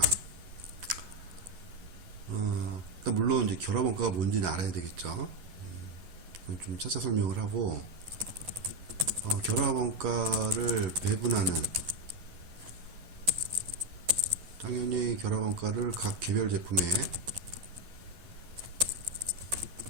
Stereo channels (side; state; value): left; late; 11 ms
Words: 일단 물론 이제 결합원가가 뭔지는 알아야 되겠죠. 그럼 좀 차차 설명을 하고, 결합원가를 배분하는, 당연히 결합원가를 각 개별 제품에